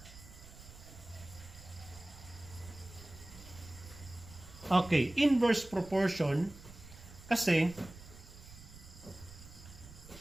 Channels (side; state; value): right; noise; rumble, 17 dB below the sound